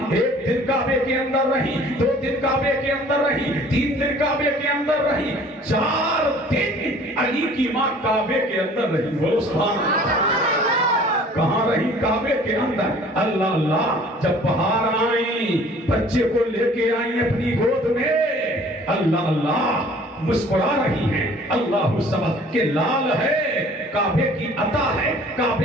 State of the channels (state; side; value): normal; both; correlation 0.51